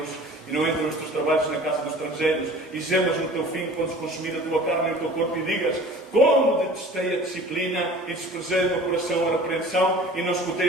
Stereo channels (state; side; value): normal; both; correlation 0.44